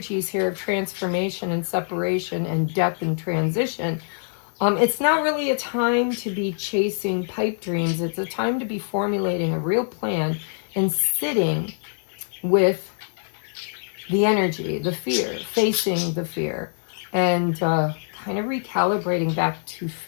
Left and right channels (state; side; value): silent; right; digital silence